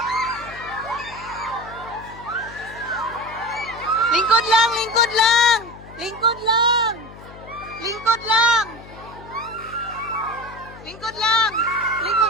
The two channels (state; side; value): noise; left; hum, 18 dB below the sound